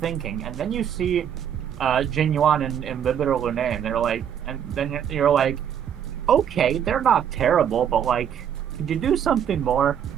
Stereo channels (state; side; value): quieter; left; 8.9 dB